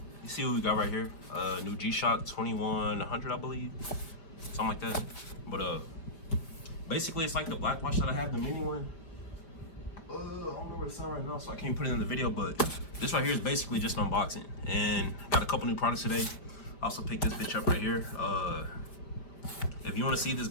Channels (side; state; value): right; late; 5.0 ms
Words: see what we got right here? New G-Shock 2100, I believe, something like that. But basically, it's like the black watch that I have, the mini one. I don't know where it's at right now, so I can't put it in the video. But this right here is basically just an unboxing, and got a couple new products today. I also picked this bitch up right here. If you want to see this,